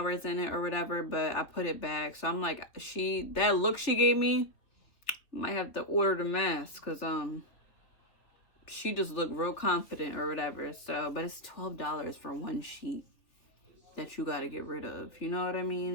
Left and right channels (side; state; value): right; late; 3.3 ms